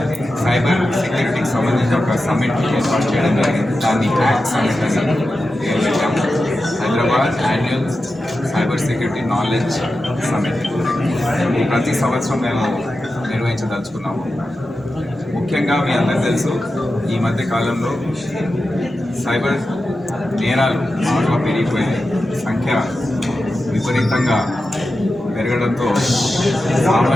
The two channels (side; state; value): both; normal; correlation 0.91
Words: సైబర్ సెక్యూరిటీకి సంబంధించిన ఒక సమ్మిట్ ఏర్పాటు చేయడం జరిగింది. దాన్ని యాక్ట్ సమ్మిట్ అని పేరు పెట్టాము. Hyderabad annual cyber security knowledge summit ప్రతి సంవత్సరం మేము నిర్వహించదలుచుకున్నాము. ముఖ్యంగా మీ అందరికీ తెలుసు, ఈ మధ్య కాలంలో సైబర్ నేరాలు బాగా పెరిగిపోయాయి. సంఖ్య విపరీతంగా పెరగడంతో